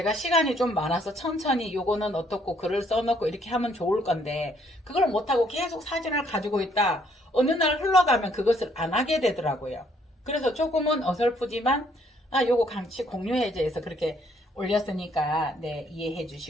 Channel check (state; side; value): normal; both; correlation 0.66